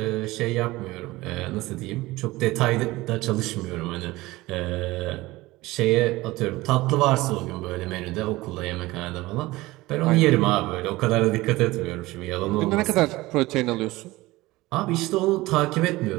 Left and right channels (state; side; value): quieter; left; 19.5 dB